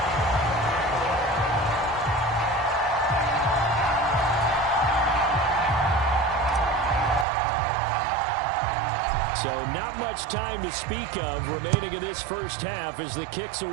So not much time to speak of remaining in this first half as the kick's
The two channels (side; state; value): left; drops out; at 7.2 s